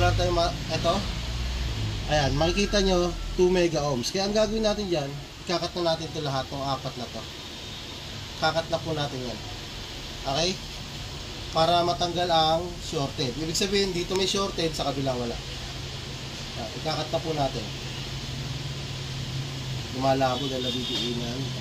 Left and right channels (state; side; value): identical; both; correlation 1.00